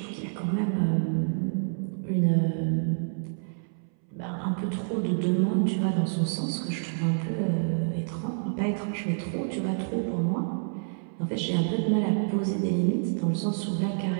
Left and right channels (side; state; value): left; silent; 59 dB below the other